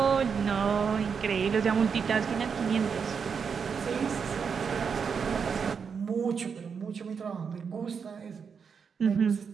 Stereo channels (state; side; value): quieter; left; 6.3 dB